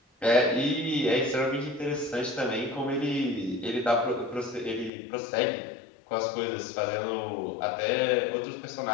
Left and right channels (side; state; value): right; drops out; at 4.9 s